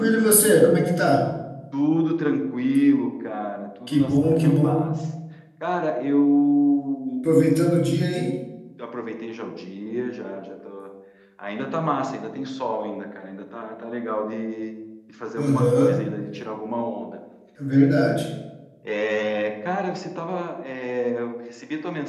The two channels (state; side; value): identical; both; correlation 1.00